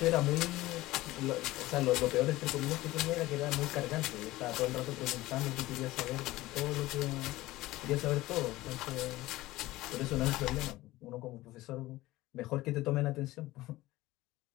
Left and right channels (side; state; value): right; quieter; 17.9 dB